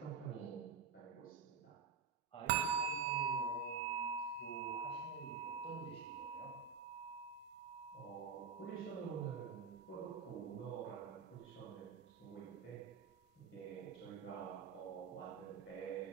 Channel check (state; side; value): quieter; left; 6.0 dB